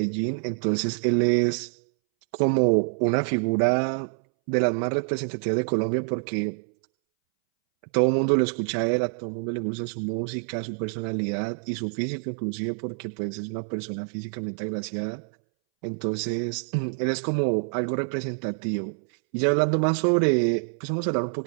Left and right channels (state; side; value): silent; left; 61 dB below the other